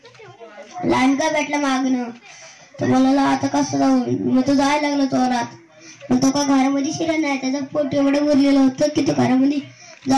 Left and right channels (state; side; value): identical; both; correlation 1.00